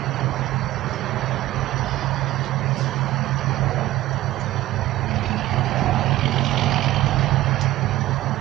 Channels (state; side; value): quieter; left; 16.0 dB